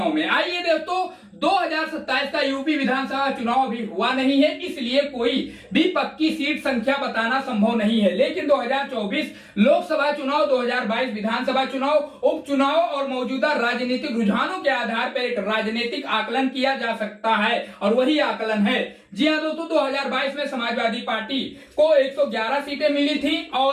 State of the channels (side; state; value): both; identical; correlation 1.00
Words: में। आइए दोस्तों, 2027 का यूपी विधानसभा चुनाव अभी हुआ नहीं है, इसलिए कोई भी पक्की सीट संख्या बताना संभव नहीं है। लेकिन 2024 लोकसभा चुनाव, 2022 विधानसभा चुनाव, उपचुनाव और मौजूदा राजनीतिक रुझानों के आधार पर एक राजनीतिक आकलन किया जा सकता है और वही आकलन है। जी हां दोस्तों, 2022 में समाजवादी पार्टी को 111 सीटें मिली थी